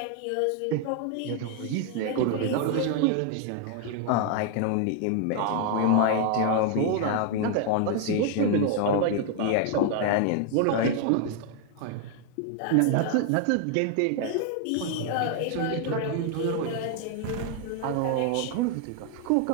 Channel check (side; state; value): both; different; correlation 0.00